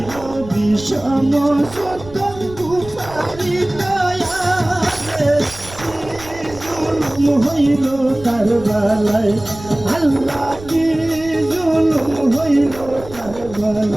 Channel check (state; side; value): noise; right; rumble, 17 dB below the sound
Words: বিষম সত্য কুফারি দয়ালে জুলুম হইল কারবালায় আল্লাহ কি জুলুম হইল